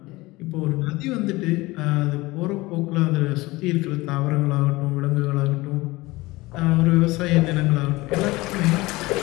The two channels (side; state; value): right; quieter; 20.9 dB